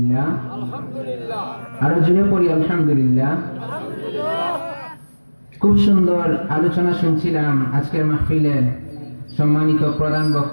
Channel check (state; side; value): inverted; both; correlation -1.00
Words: আলহামদুলিল্লাহ, আরো জোরে পড়ি আলহামদুলিল্লাহ। খুব সুন্দর আলোচনা শুনছিলাম আজকের মাহফিলের সম্মানিত প্রধান